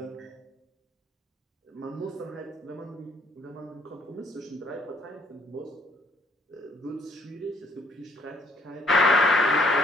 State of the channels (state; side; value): normal; both; correlation 0.64